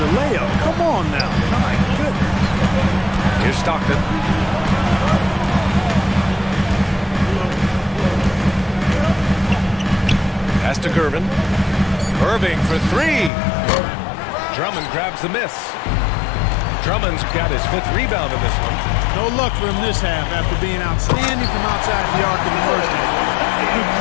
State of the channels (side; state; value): right; drops out; at 13.3 s